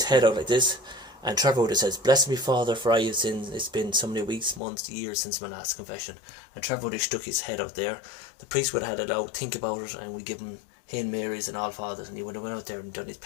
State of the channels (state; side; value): drops out; right; at 4.6 s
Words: head out like this, and Trevor would have says, "Bless me, Father, for I have sinned. It's been so many weeks, months, years since my last confession." And Trevor would have stuck his head out there. The priest would have had it out, think about it, and we give him Hail Marys and All Fathers, and he would have went out there and done his